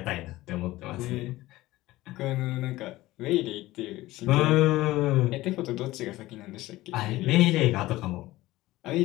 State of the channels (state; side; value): quieter; right; 17.6 dB